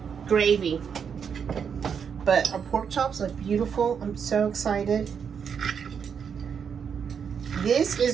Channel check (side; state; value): left; quieter; 7.0 dB